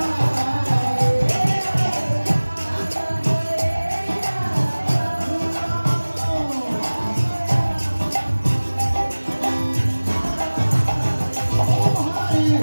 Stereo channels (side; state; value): both; inverted; correlation -1.00